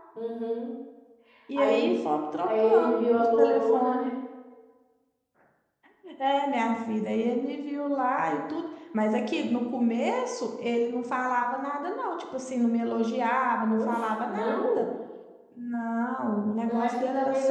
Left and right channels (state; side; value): identical; both; correlation 1.00